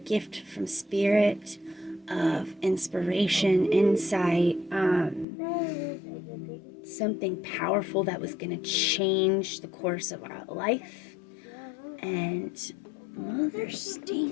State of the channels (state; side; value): drops out; right; at 5.2 s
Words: from Spirit of inspiration, insight, something powerful that was going to change the course of our life. And Mother